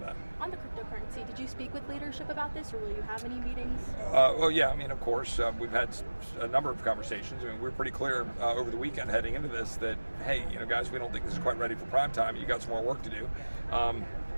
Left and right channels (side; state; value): both; inverted; correlation -1.00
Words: that. On the cryptocurrency, did you speak with leadership about this, or will you have any meetings? Well, yeah. I mean, of course, we've had a number of conversations. I mean, we're pretty clear over the weekend heading into this that, hey, guys, we don't think this is quite ready for prime time. You got some more work to do.